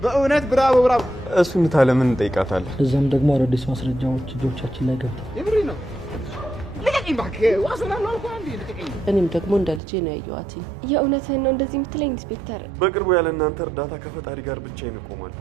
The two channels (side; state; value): left; drops out; at 9.8 s